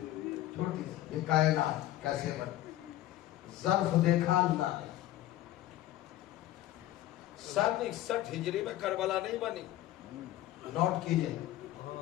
چھوٹی سی، یہ کائنات کیسے بنی؟ ظرف دیکھا اللہ نے۔ 61 ہجری میں کربلا نہیں بنی، نوٹ کیجئے،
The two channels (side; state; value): right; quieter; 14.3 dB